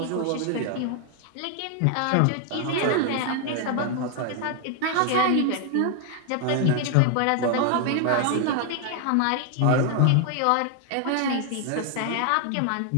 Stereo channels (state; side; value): different; both; correlation 0.00